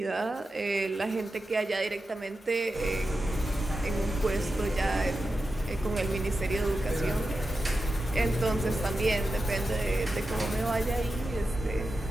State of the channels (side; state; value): both; normal; correlation 0.91